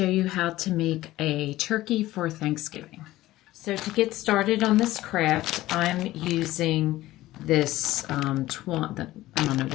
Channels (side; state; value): right; quieter; 16.4 dB